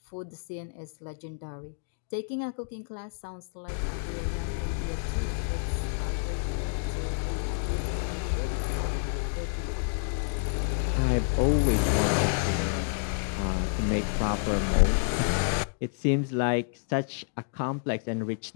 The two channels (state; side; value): silent; right; digital silence